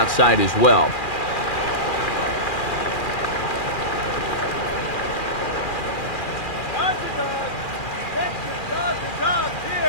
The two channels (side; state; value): right; late; 2.4 ms